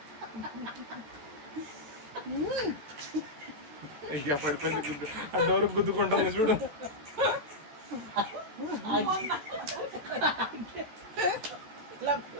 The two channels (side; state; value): left; late; 14 ms